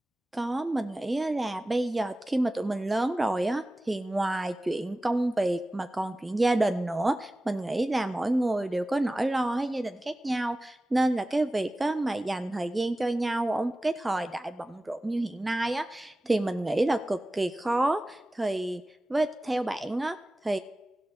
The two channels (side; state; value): both; normal; correlation 0.96